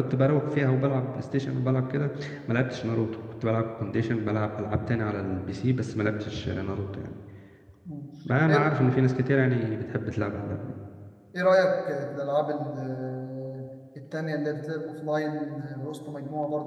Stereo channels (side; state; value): both; identical; correlation 1.00